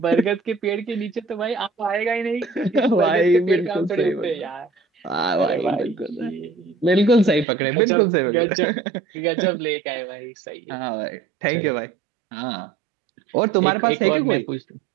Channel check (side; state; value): left; drops out; at 7.5 s